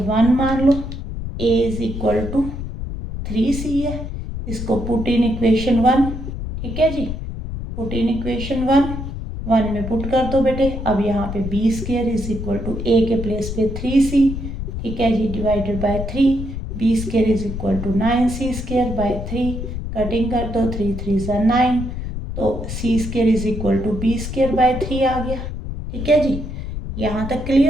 मान लो, a is equal to 3c है, इसको पुट इन इक्वेशन 1। ठीक है जी, पुट इन इक्वेशन 1 में पुट कर दो बेटे। अब यहाँ पे B square is equal to A के प्लेस पे 3c, ठीक है जी, divided by 3। B square is equal to 9c square by 3, cutting कर दो, 3 3 ज़ा 9, तो c square is equal to B square by 3 आ गया। ठीक है जी, यहाँ तक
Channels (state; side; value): noise; left; rumble, 6 dB below the sound